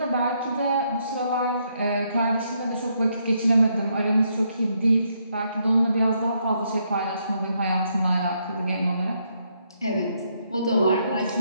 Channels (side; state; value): both; inverted; correlation -0.75